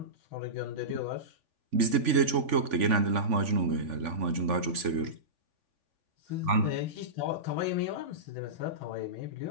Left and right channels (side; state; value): left; late; 3.5 ms